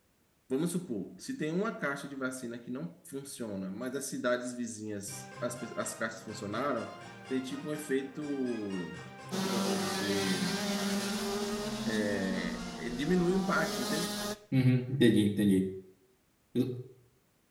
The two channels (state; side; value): identical; both; correlation 1.00